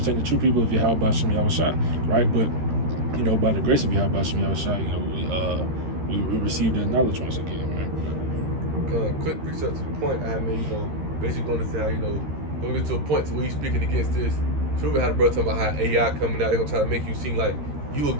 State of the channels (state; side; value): late; left; 13 ms